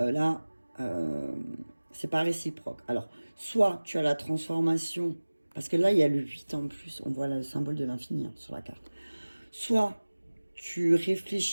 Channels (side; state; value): both; inverted; correlation -1.00